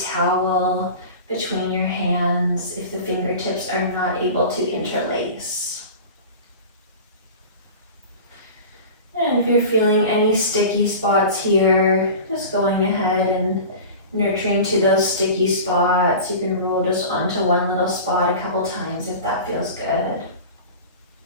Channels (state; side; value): inverted; both; correlation -0.35